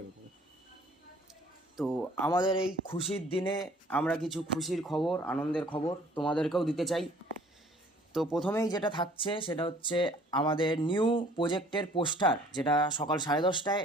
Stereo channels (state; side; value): normal; both; correlation 0.55